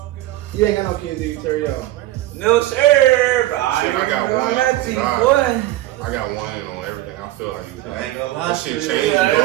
You ain't got no kids, do you, Terrio? No sir, but Shit, I got one. Nothing, Nah. boy. I got one on everything. I feel like you. I ain't gonna lie. That shit shit. changed, Yeah,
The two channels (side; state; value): left; quieter; 15.7 dB